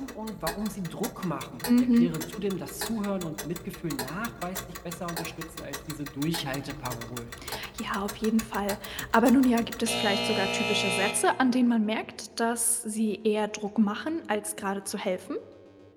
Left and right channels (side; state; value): both; identical; correlation 1.00